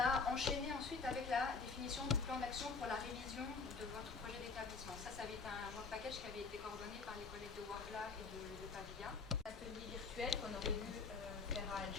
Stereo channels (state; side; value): quieter; right; 4.6 dB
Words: enchaîné ensuite avec la définition du plan d'action pour la révision de votre projet d'établissement. Ça avait été un work package qui avait été coordonné par les collègues de Wargla et de Pavilla. Atelier virtuel qu'on aurait dû faire à